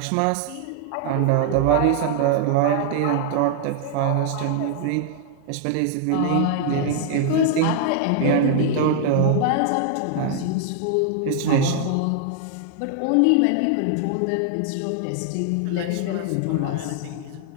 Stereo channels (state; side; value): different; both; correlation 0.00